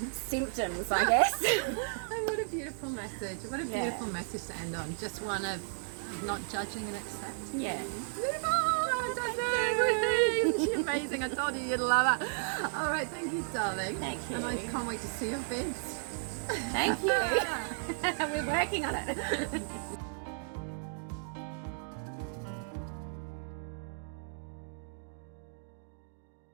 symptoms, I guess. Oh, what a beautiful message. What a beautiful message to end on. Just one of not judging and accepting. Yeah. Beautiful. She's amazing. I told you you'd love her. All right, thank you, darling. Thank you. And I can't wait to see your vids. Thank you. We're working on it.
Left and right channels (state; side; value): silent; left; digital silence